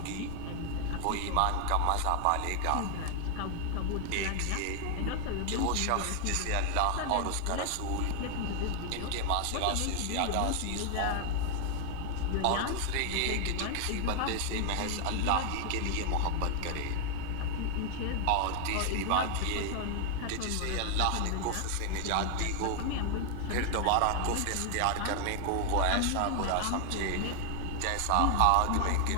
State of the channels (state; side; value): different; both; correlation 0.00